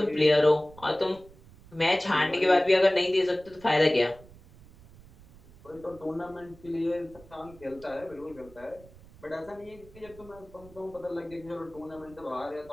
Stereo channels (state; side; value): noise; right; rumble, 23 dB below the sound